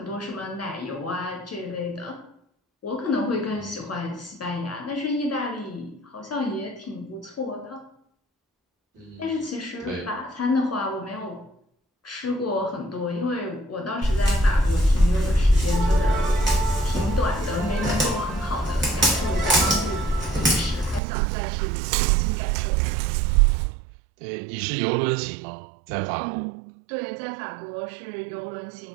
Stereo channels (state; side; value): drops out; left; at 21.0 s